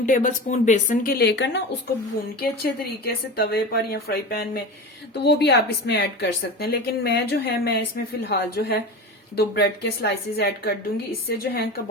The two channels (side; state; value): both; normal; correlation 0.28